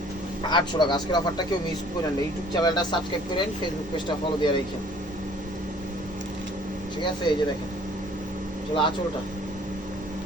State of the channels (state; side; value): normal; both; correlation 0.54